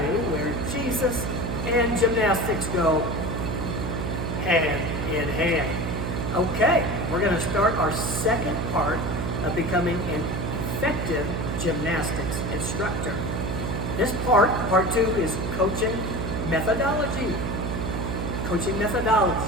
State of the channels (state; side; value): noise; right; hum, 2 dB below the sound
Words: where Jesus and gymnastics go hand in hand. Okay, we're going to start our second part of becoming an effective gymnastics instructor. This part two, is coaching methodology. Coaching methodology,